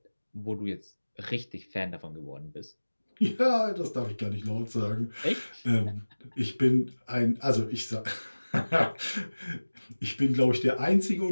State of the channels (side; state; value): both; inverted; correlation -1.00